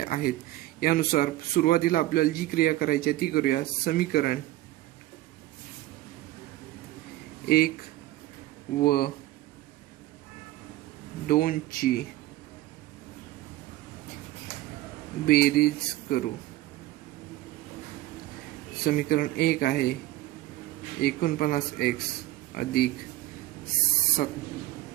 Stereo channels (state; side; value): quieter; left; 16.1 dB